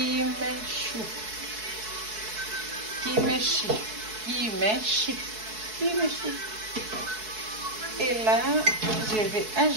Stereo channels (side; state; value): left; late; 4.6 ms